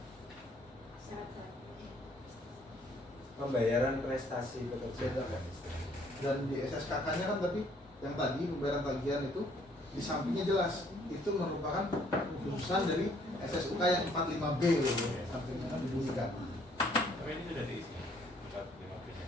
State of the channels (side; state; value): both; normal; correlation 0.63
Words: Syarat-syarat. Pembayaran prestasi pekerja Dan di SSKK-nya kan tapi yang tadi pembayaran tagihan itu di sampingnya jelas itu merupakan khususan dari SSUK yang 45B loh, sampingnya kan dibunyikan. Tapi ini sudah diisi. 45B-nya.